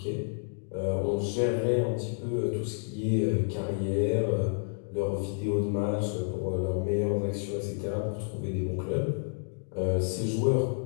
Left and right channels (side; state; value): right; silent; digital silence